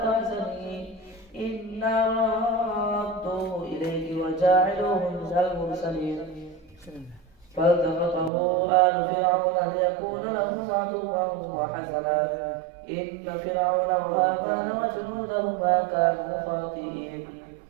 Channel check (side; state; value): left; drops out; at 8.3 s